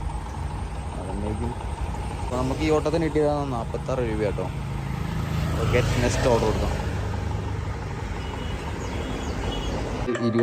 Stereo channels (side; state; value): both; identical; correlation 1.00